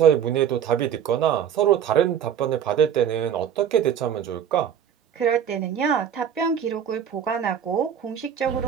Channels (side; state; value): left; quieter; 8.6 dB